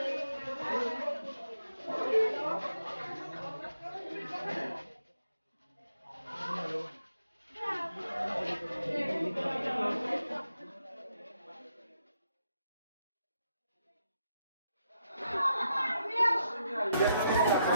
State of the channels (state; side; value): inverted; both; correlation -0.79